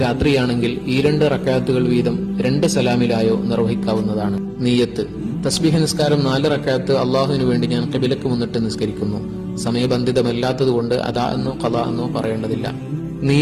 രാത്രിയാണെങ്കിൽ ഈ 2 റക്അത്തുകൾ വീതം 2 സലാമിലായോ നിർവഹിക്കാവുന്നതാണ്. നിയ്യത്ത്. തസ്ബീഹ് നിസ്കാരം 4 റക്അത്ത് അള്ളാഹുവിനു വേണ്ടി ഞാൻ ഖിബലക്ക് മുന്നിട്ട് നിസ്കരിക്കുന്നു. സമയബന്ധിതമല്ലാത്തതുകൊണ്ട് അദാ എന്നോ ഖളാ എന്നോ പറയേണ്ടതില്ല.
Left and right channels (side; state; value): both; identical; correlation 1.00